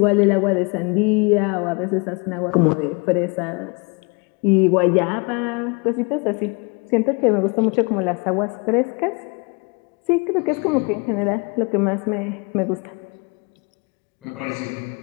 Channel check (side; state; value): right; quieter; 31.1 dB